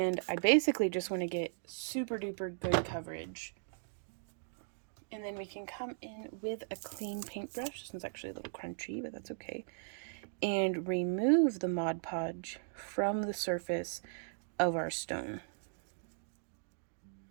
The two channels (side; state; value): left; silent; digital silence